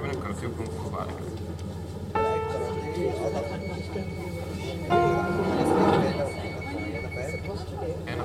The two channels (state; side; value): identical; both; correlation 1.00